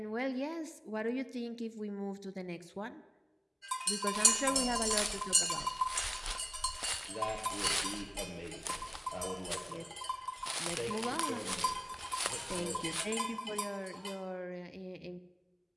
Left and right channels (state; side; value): identical; both; correlation 1.00